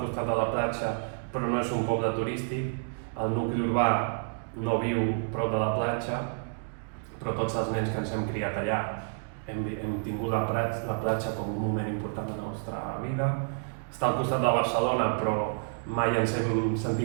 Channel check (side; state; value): left; silent; digital silence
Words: costat de la platja, però no és un poble turístic, el nucli urbà no viu prop de la platja, però tots els nens que ens hem criat allà hem tingut la platja com un moment important de la nostra vida. Està al costat de Barcelona, però mai ens hem